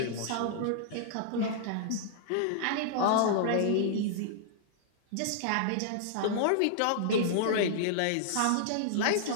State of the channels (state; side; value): different; both; correlation -0.01